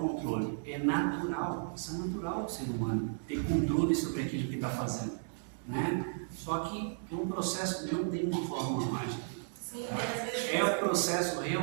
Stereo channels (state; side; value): silent; left; digital silence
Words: É natural, isso é natural do ser humano, ter controle sobre aquilo que está fazendo, né? Só que é um processo, não tem uma fórmula mágica. Sim, é um processo